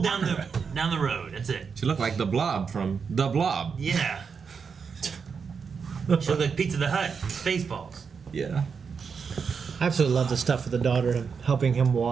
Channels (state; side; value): quieter; left; 5.9 dB